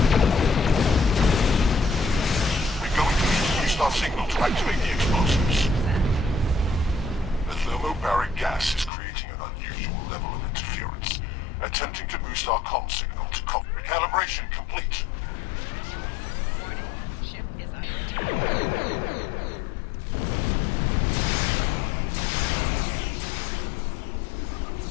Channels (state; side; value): drops out; right; at 8.9 s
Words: We're going to need to use our signal to activate the explosives. The thermobaric gas is creating an unusual level of interference, attempting to boost our comm signal to recalibration complete. Warning, ship is under attack.